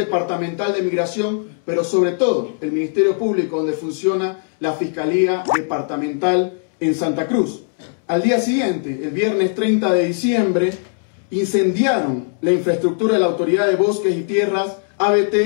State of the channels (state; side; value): silent; right; 66 dB below the other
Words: de Migración, pero sobre todo el Ministerio Público, donde funciona la Fiscalía Departamental en Santa Cruz. Al día siguiente, el viernes 30 de diciembre, incendiaron la infraestructura de la Autoridad de Bosques y Tierras,